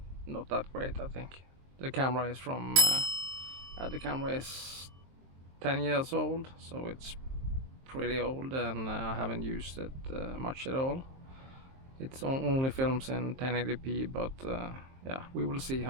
not that great. I think the camera is the camera is 10 years old, so it's pretty old, and I haven't used it much at all. It's only films in 1080p, but yeah, we will see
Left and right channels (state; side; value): late; left; 23 ms